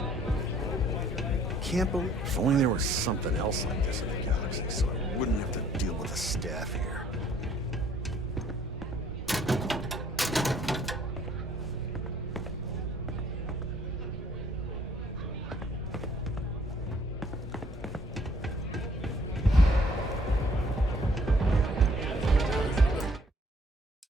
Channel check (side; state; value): both; normal; correlation 0.60